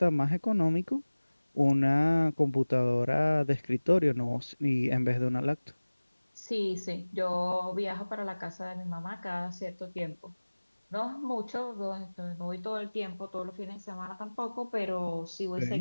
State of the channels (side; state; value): both; inverted; correlation -1.00